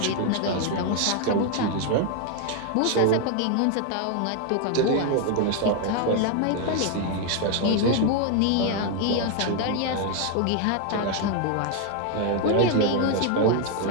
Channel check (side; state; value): both; different; correlation 0.00